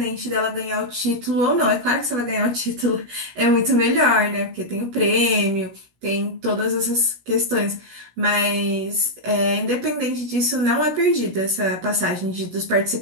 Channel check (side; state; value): left; late; 17 ms